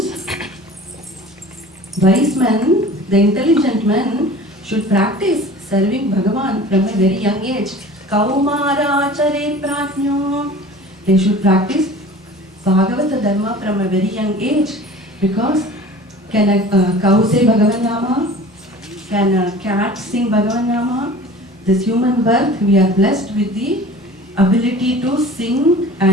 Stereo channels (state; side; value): normal; both; correlation 0.42